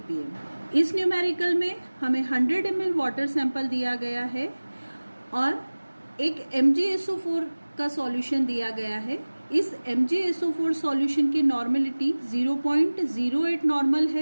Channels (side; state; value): both; inverted; correlation -1.00